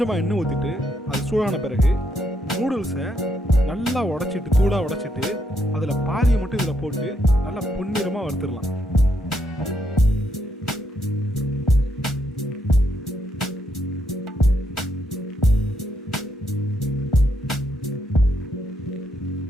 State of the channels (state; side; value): normal; both; correlation 0.77